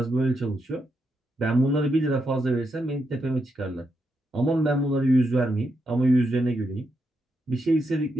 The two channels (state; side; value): normal; both; correlation 0.83